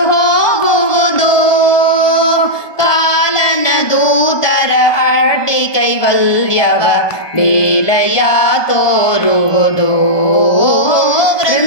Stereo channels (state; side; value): late; right; 1.2 ms